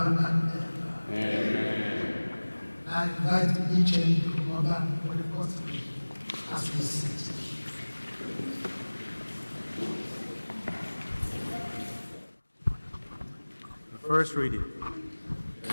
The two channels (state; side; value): inverted; both; correlation -1.00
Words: and ever. Amen. I invite each and every Oba for the first reading as we sit. First reading.